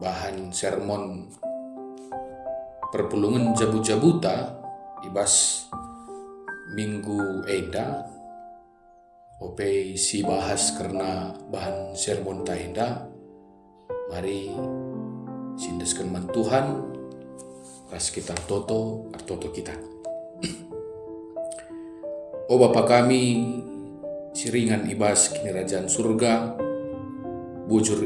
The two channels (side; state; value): both; identical; correlation 1.00